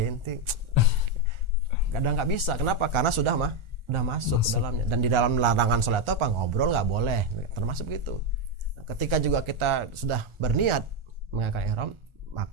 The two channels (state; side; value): late; left; 1.4 ms